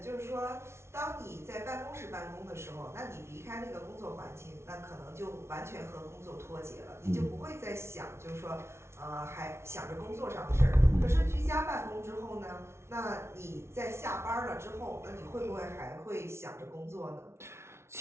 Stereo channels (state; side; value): late; left; 0.13 ms